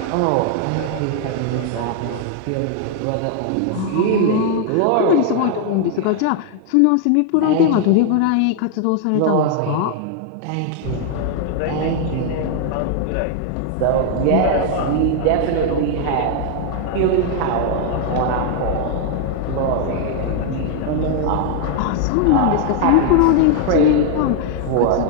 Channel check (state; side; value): different; both; correlation 0.00